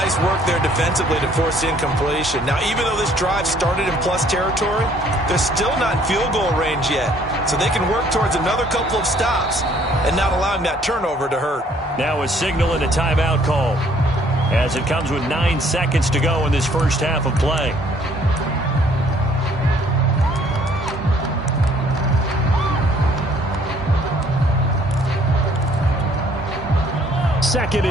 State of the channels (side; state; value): both; normal; correlation 0.61